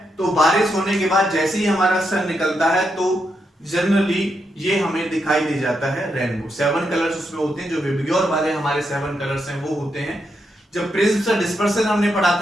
तो बारिश होने के बाद जैसे ही हमारा सन निकलता है तो जनरली ये हमें दिखाई दे जाता है रेनबो। 7 कलर्स उसमें होते हैं, जो विबग्योर वाले हमारे 7 कलर्स हैं वो होते हैं। जब प्रिज्म से डिस्पर्सन हमने पढ़ा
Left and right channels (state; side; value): normal; both; correlation 0.82